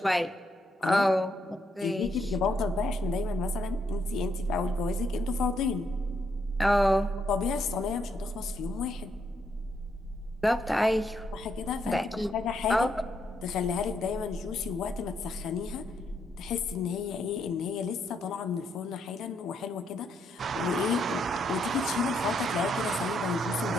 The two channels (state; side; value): normal; both; correlation 0.76